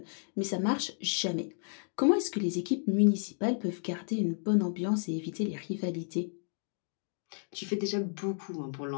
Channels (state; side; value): silent; right; 56 dB below the other